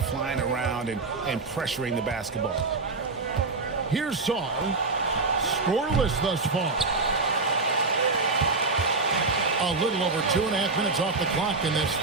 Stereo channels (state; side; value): quieter; left; 3.8 dB